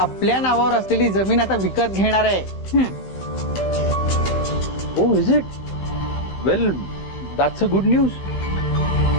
नावावर असलेली जमीन आता विकत घेणार आहे. Oh is it? Well, that's a good news.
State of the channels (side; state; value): right; late; 15 ms